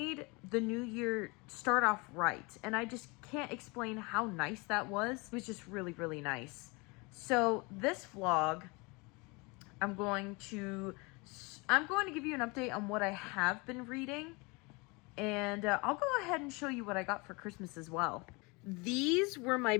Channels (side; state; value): right; quieter; 27.4 dB